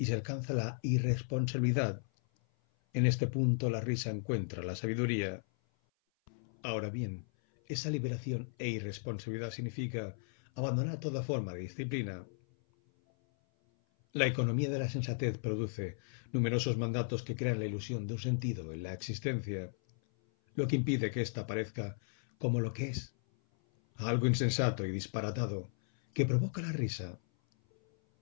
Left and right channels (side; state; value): right; silent; 54 dB below the other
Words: se alcanza la irresponsabilidad. En este punto la risa encuentra la sabiduría. Ahora bien, esa liberación e irresponsabilidad significa abandonar toda forma de disciplina. La economía de la sensatez produce numerosos mandatos que crean la ilusión de un sentido en la existencia, lo que impide que ésta aparezca como lo que es, algo insensato y disparatado, que provoca la risa